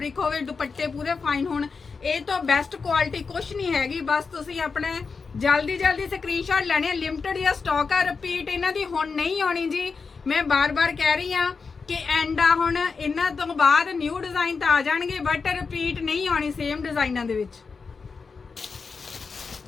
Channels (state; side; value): quieter; right; 4.9 dB